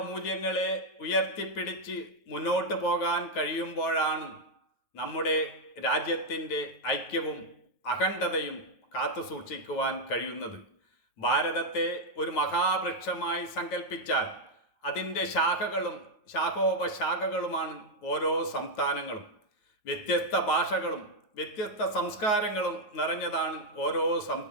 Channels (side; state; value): right; late; 9.3 ms